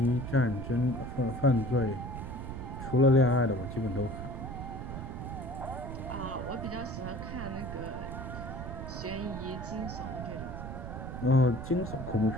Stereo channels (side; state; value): right; noise; rumble, 7 dB below the sound